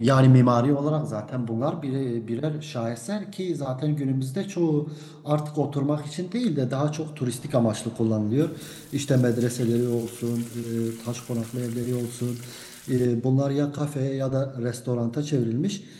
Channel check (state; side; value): identical; both; correlation 1.00